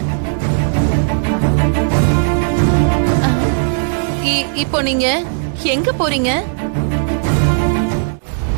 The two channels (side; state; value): left; silent; 69 dB below the other